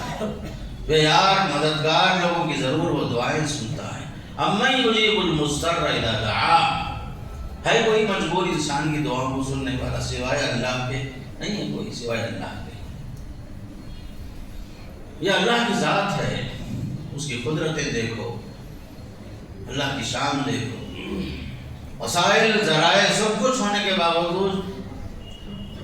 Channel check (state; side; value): identical; both; correlation 1.00